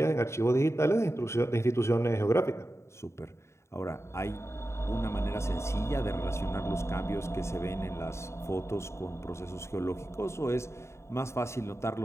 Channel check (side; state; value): right; late; 0.13 ms